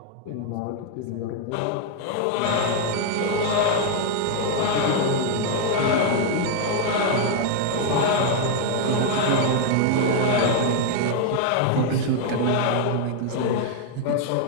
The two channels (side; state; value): both; different; correlation 0.00